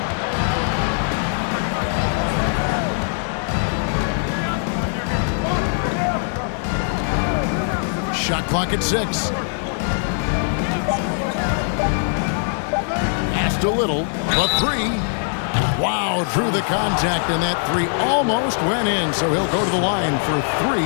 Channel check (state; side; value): silent; right; digital silence